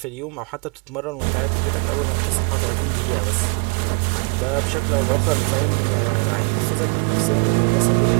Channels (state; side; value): quieter; left; 34.9 dB